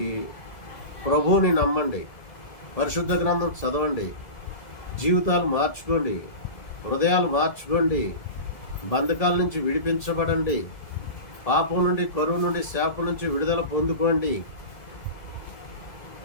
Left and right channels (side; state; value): right; late; 1.7 ms